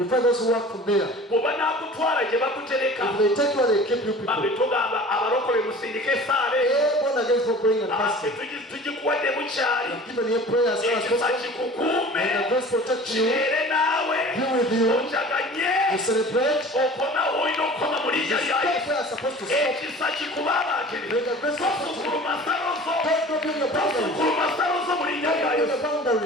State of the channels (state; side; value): normal; both; correlation 0.42